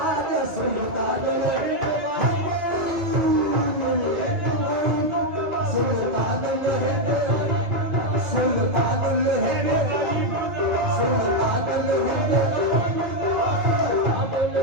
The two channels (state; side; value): late; left; 2.2 ms